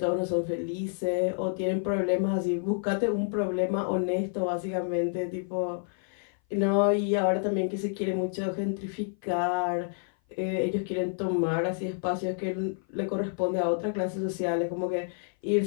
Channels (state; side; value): silent; right; 56 dB below the other